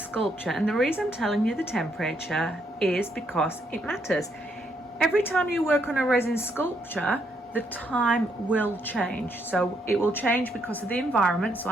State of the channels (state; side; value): normal; both; correlation 0.75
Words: and the reason I'm telling you the temperature is because it matters. Every time you work on a resin sculpture, the time will change. So it will change because of the environment. So